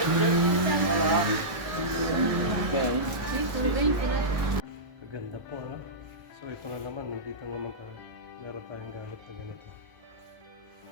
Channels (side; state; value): left; late; 1.2 ms